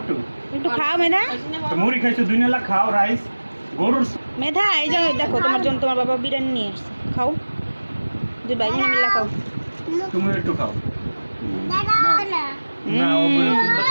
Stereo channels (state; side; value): inverted; both; correlation -1.00